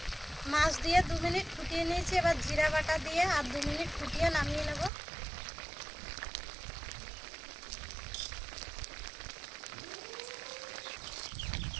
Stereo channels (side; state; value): left; drops out; at 4.9 s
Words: মাছ দিয়ে 2 মিনিট ফুটিয়ে নিয়েছি, এবার জিরা বাটা দিয়ে আর 2 মিনিট ফুটিয়ে নামিয়ে নেব।